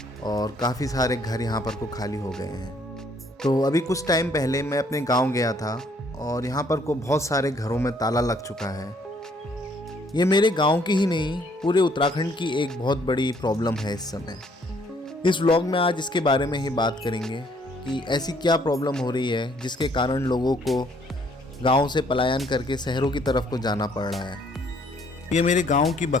और काफ़ी सारे घर यहाँ पर को खाली हो गए हैं। तो अभी कुछ टाइम पहले मैं अपने गांव गया था और यहाँ पर को बहुत सारे घरों में ताला लग चुका है। ये मेरे गांव की ही नहीं, पूरे उत्तराखंड की एक बहुत बड़ी प्रॉब्लम है इस समय। इस व्लॉग में आज इसके बारे में ही बात करेंगे कि ऐसी क्या प्रॉब्लम हो रही है जिसके कारण लोगों को गांव से पलायन करके शहरों की तरफ को जाना पड़ रहा है। ये मेरे गांव की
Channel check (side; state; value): both; normal; correlation 0.64